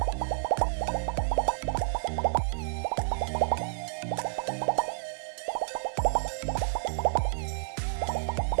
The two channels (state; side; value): silent; left; digital silence